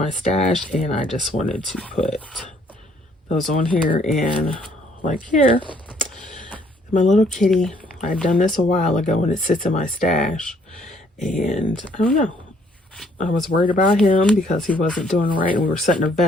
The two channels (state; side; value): normal; both; correlation 0.64